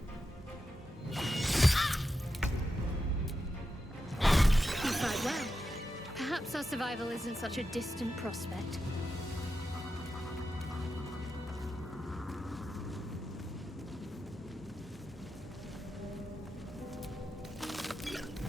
Perhaps our survival isn't such a distant prospect.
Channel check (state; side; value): normal; both; correlation 0.89